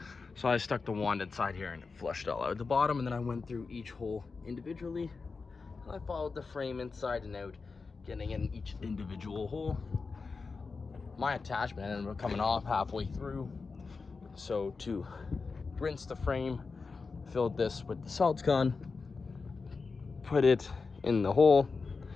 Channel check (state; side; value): quieter; right; 4.5 dB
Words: So I stuck the wand inside here and it flushed all out the bottom, and then I went through each hole individually, and I followed the frame inside and out, getting in each individual hole. My attachment ended up coming off halfway through, so to rinse the frame, filled this with the saltsgone, put it in the hole,